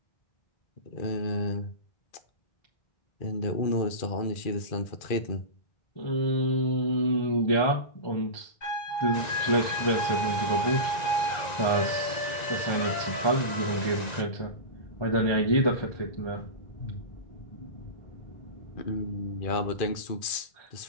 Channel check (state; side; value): late; right; 1.9 ms